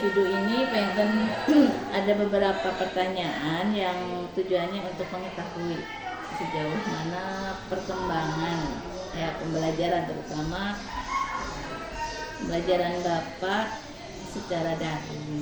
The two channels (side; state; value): both; identical; correlation 1.00